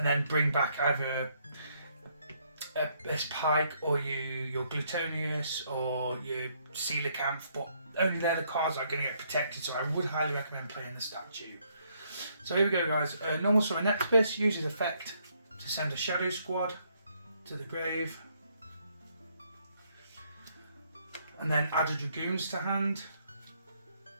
then bring back either this Pike or your Glutonius or your Coelacanth, but only they're the cards that are going to get protected, so I would highly recommend playing the statue. So here we go, guys. Normal Summon Nectibus uses effect to send a Shadow Squad to the grave, and then add a Dragoons to hand.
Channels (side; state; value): both; inverted; correlation -0.70